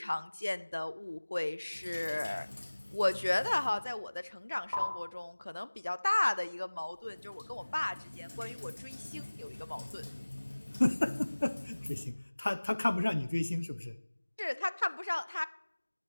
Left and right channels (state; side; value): inverted; both; correlation -1.00